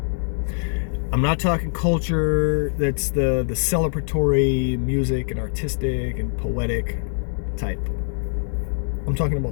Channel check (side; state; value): right; silent; digital silence